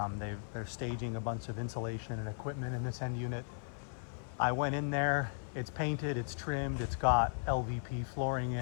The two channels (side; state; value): right; silent; 53 dB below the other